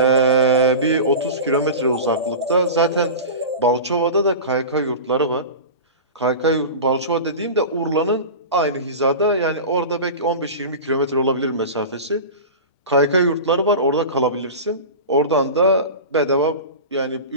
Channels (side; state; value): both; inverted; correlation -0.30